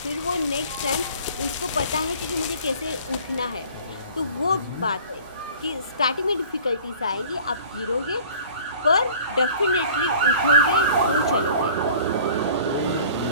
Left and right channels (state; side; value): inverted; both; correlation -0.47